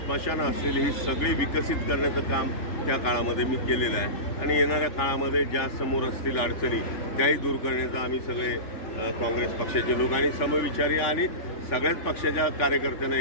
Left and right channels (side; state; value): right; late; 3.4 ms